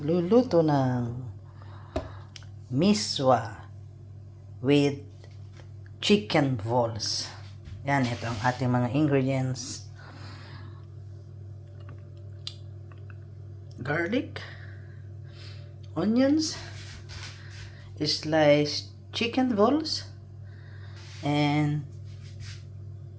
ng Misua with chicken balls. Yan, ito ang ating mga ingredients. Garlic, onions, sliced chicken balls, and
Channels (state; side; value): identical; both; correlation 1.00